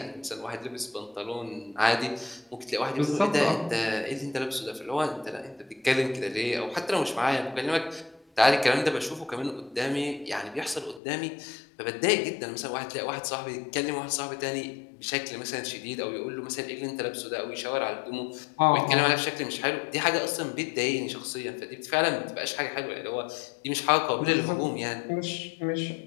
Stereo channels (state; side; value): drops out; right; at 11.0 s